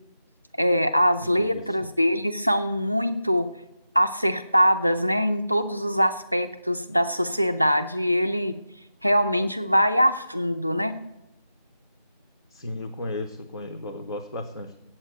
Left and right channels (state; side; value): inverted; both; correlation -0.90